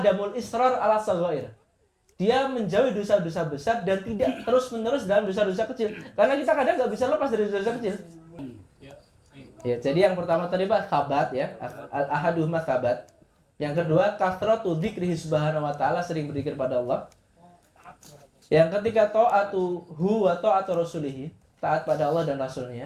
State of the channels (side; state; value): both; identical; correlation 1.00